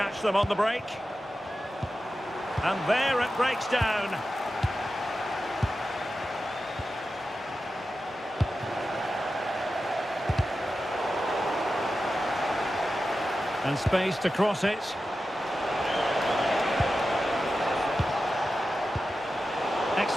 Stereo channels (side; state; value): both; normal; correlation 0.92